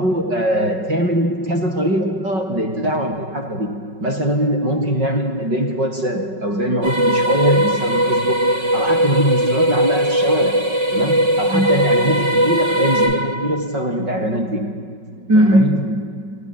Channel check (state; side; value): late; left; 5.4 ms